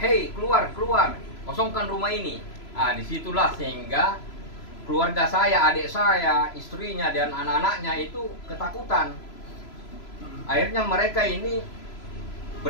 keluar, kosongkan rumah ini. Nah, disitulah sehingga keluarga saya, adik saya, istrinya dan anak-anaknya itu ketakutan. Akhirnya mereka ini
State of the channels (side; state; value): right; late; 3.0 ms